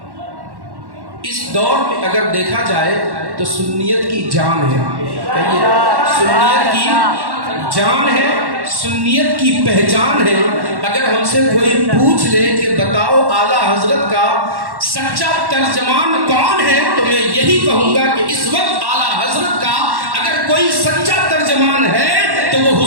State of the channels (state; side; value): late; left; 1.1 ms